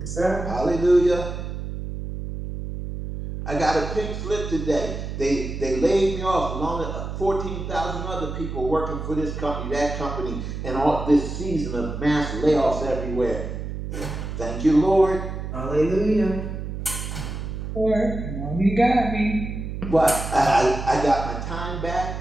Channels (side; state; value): right; noise; hum, 6 dB below the sound